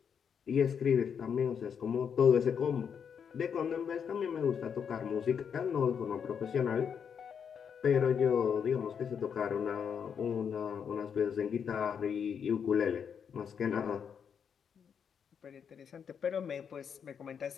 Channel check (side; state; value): right; quieter; 7.3 dB